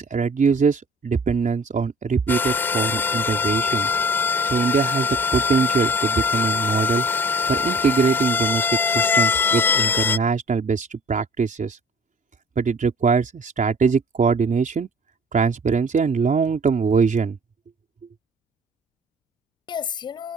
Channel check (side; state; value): both; normal; correlation 0.48